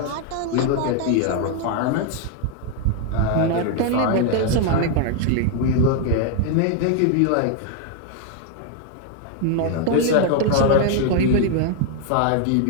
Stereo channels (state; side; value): different; both; correlation 0.00